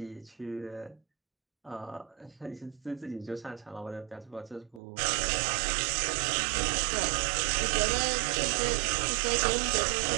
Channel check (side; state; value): left; drops out; at 4.8 s